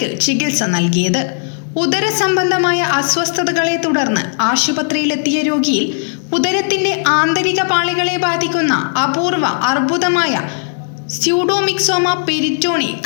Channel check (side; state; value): right; silent; digital silence